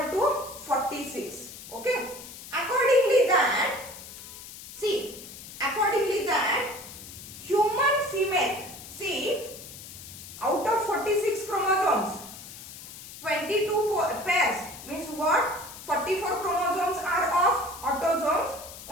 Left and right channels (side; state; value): left; noise; hiss, 14 dB below the sound